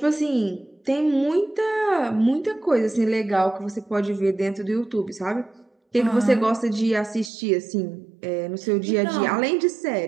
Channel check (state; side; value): drops out; left; at 7.3 s